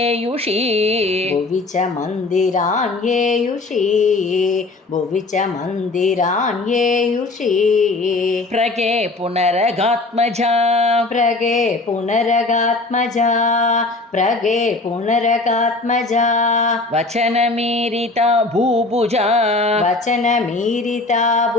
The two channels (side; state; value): right; quieter; 3.3 dB